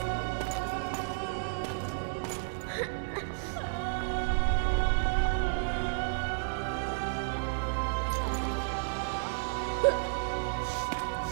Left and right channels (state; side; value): silent; left; digital silence